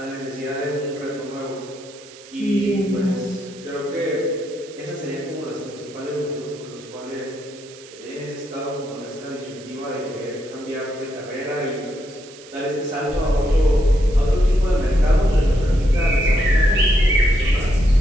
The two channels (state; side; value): noise; right; hiss, 20 dB below the sound